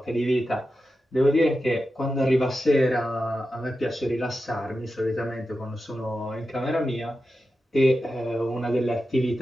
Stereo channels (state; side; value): normal; both; correlation 0.91